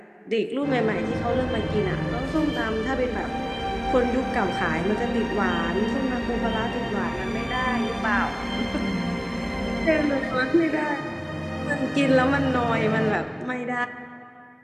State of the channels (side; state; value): both; identical; correlation 1.00